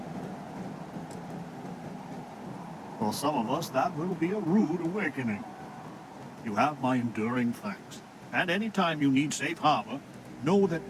For some of us, that will be a rude awakening. You have my enduring thanks. And anytime you need safe harbor, know that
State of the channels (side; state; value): both; identical; correlation 1.00